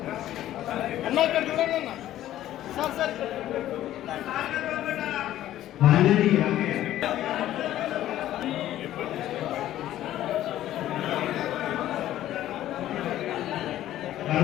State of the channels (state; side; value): quieter; right; 13.2 dB